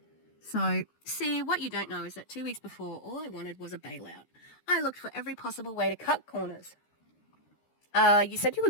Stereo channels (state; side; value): late; right; 13 ms